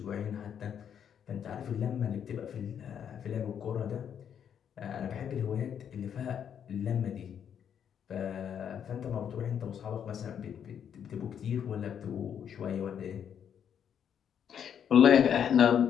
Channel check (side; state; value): right; quieter; 8.5 dB